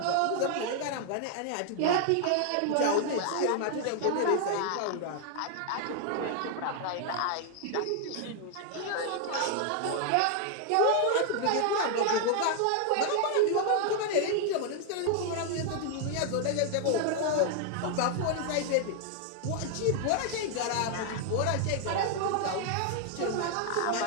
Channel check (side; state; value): both; different; correlation 0.00